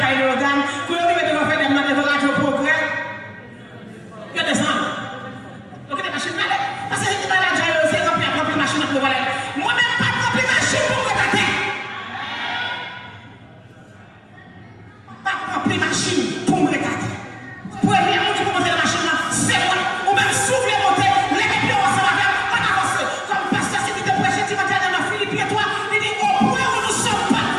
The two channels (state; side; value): identical; both; correlation 1.00